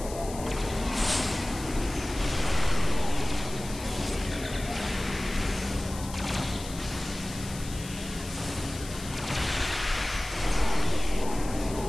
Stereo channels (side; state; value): left; noise; hiss, 13 dB below the sound